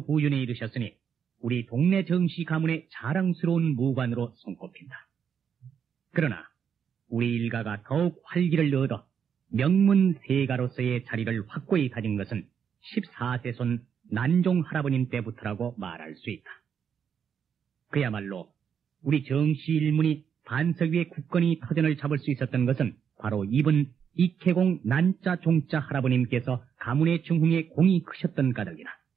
부윤에 이르셨으니 우리 동네 정시 가문의 자랑스러운 무관으로 손꼽힌다. 그러나 우리 일가가 더욱 활기를 얻어 명문세가로서의 자리를 확고히 다진 것은 14세 손 난종 할아버님 때부터라고 말할 수 있다. 그야말로 우리 정시 일문이 반석 위에 굳건히 터전을 잡을 수 있었던 것은 바로 이분 익해공 난자 종자 할아버님께서 가문의 중흥에 공이 크셨던 까닭이다.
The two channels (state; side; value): quieter; left; 7.6 dB